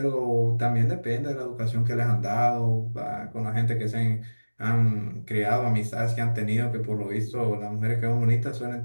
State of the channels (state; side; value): inverted; both; correlation -1.00